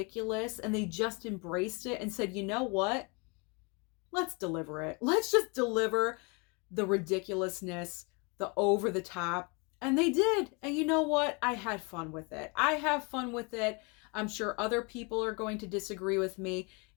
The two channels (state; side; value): quieter; right; 31.1 dB